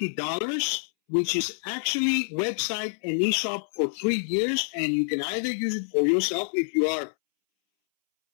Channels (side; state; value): right; silent; 60 dB below the other